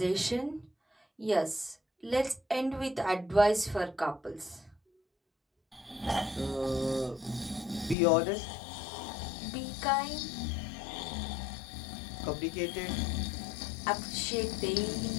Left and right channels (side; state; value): right; drops out; at 8.0 s